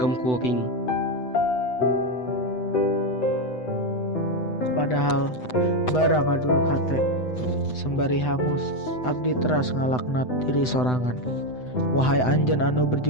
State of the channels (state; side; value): late; right; 8.0 ms